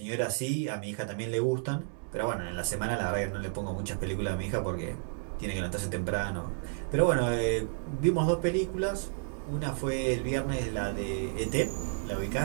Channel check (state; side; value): silent; left; digital silence